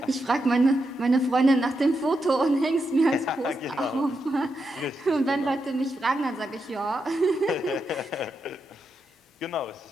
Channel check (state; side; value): normal; both; correlation 0.85